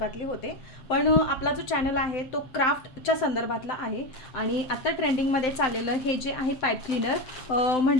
होते, पण आपला जो चॅनल आहे तो क्राफ्टच्या संदर्भातला आहे. आणि आत्ता ट्रेंडिंगमध्ये चाललेलं हे जे आहे पाईप क्लीनर,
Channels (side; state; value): right; late; 7.8 ms